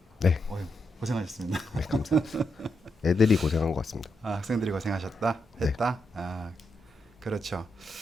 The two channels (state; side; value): normal; both; correlation 0.83